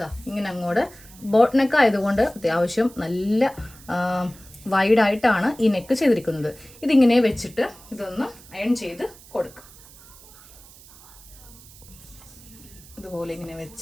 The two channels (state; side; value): noise; right; hiss, 21 dB below the sound